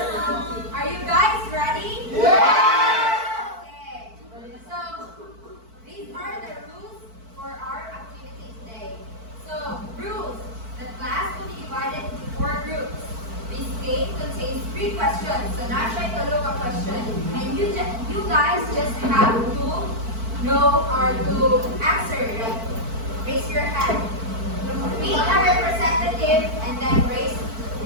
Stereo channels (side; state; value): left; late; 4.5 ms